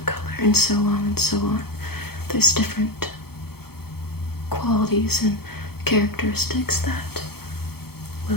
color, and so on and so on. There's different qualities and characteristics that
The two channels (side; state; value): right; late; 0.95 ms